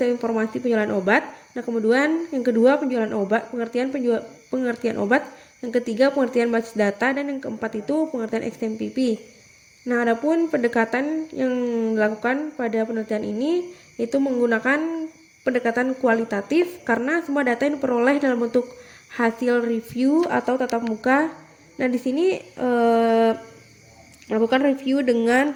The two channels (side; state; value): both; identical; correlation 1.00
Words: informasi penjualan obat. Nah, kemudian yang kedua penjualan obat, pengertian obat. Yang ketiga pengertian basis data, dan yang keempat itu pengertian XMPP. Nah, adapun pendekatan yang dilakukan pada penelitian ini itu menggunakan pendekatan kualitatif karena semua data yang diperoleh dalam bentuk hasil review atau tatap muka. Nah, di sini melakukan review dengan